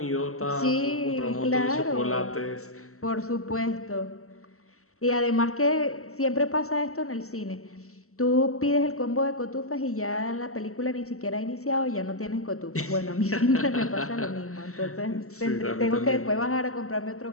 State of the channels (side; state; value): right; late; 0.64 ms